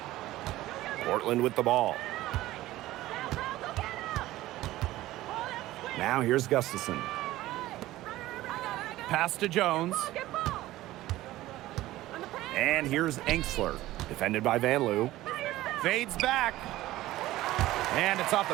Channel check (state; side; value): quieter; left; 16.3 dB